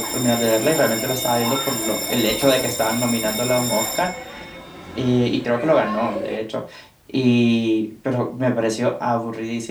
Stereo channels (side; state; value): both; identical; correlation 1.00